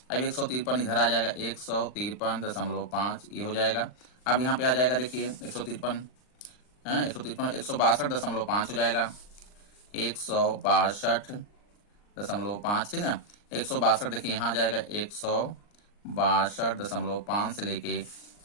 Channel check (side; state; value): right; late; 39 ms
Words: अब 153 इधर आ जाएगा, 153.5 ये हो जाएगा। अब यहाँ पे आ जाएगा देखिए 153 है 162.5 हो जाएगा, 162.5, ठीक है। 162 देखिए यहाँ आ जाएगा 162.5 से लेके